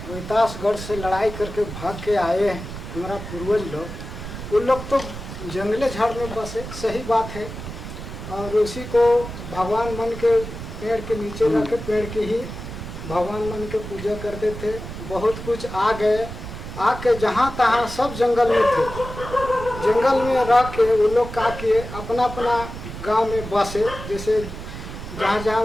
रोहतासगढ़ से लड़ाई करके भाग के आए हैं हमारा पूर्वज लोग, वो लोग तो जंगले झाड़ में बसे, सही बात है। और उसी को भगवान मन के पेड़ के नीचे जाके पेड़ की ही भगवान मन के पूजा करते थे। बहुत कुछ आ गए, आके जहाँ तहाँ सब जंगल में थे, जंगल में रह के वो लोग क्या किए, अपना अपना गांव में बसे। जैसे जहाँ जहाँ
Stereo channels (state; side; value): noise; right; rumble, 10 dB below the sound